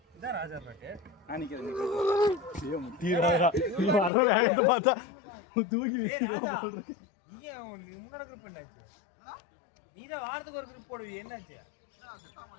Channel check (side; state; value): right; drops out; at 4.1 s